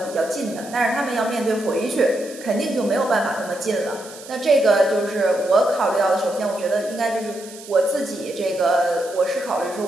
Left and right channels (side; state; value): right; noise; hiss, 17 dB below the sound